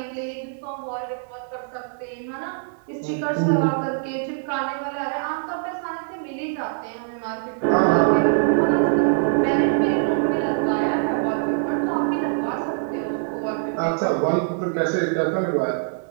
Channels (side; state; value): left; silent; 63 dB below the other